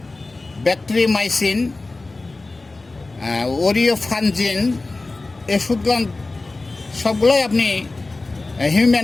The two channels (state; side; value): quieter; right; 3.3 dB